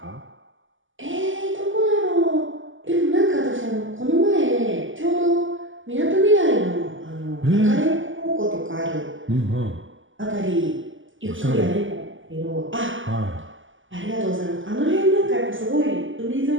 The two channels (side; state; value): left; late; 0.57 ms